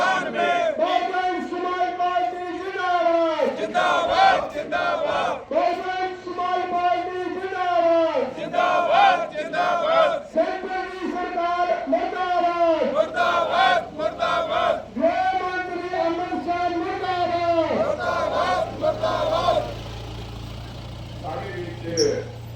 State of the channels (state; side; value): identical; both; correlation 1.00